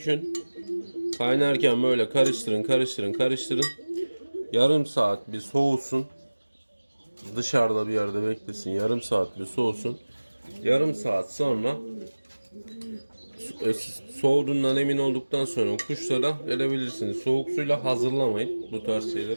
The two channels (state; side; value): inverted; both; correlation -1.00